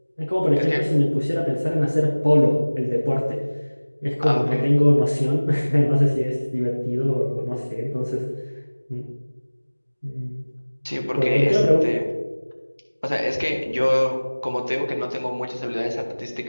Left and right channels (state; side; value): inverted; both; correlation -1.00